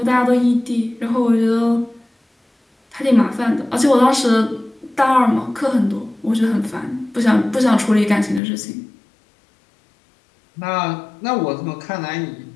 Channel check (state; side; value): drops out; right; at 8.4 s